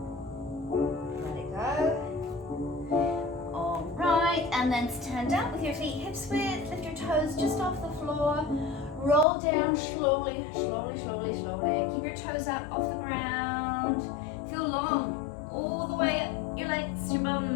Let it go. All right, and then stand up with your feet hips width. Lift your toes just off the floor. Roll down slowly, slowly, slowly, slowly. Keep your toes up off the ground. Feel long all the way up your legs, your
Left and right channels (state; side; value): drops out; right; at 9.2 s